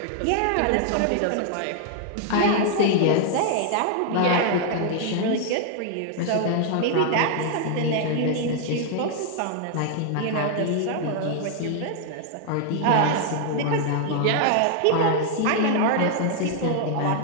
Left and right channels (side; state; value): both; different; correlation 0.00